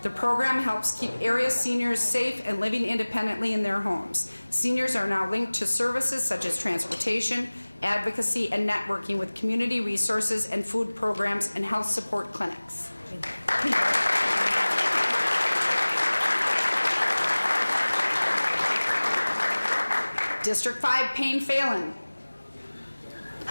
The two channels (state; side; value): inverted; both; correlation -1.00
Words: The program helps keep area seniors safe and living independently in their homes. Seniors are now linked to services such as transportation, advocacy, and networking with community resources and food programs and health support clinics. District 5, Payne Phelan.